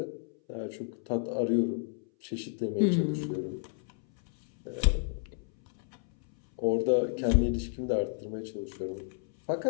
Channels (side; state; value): right; silent; 57 dB below the other